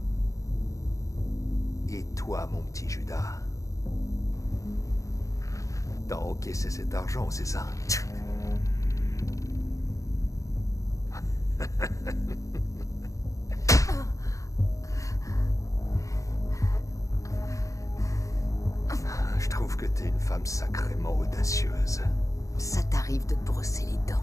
Et toi, mon petit Judas, t'as encaissé cet argent, c'est ça? Je trouve que t'es une femme sacrément audacieuse. Ça t'arrive de te brosser les dents.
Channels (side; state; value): right; late; 0.16 ms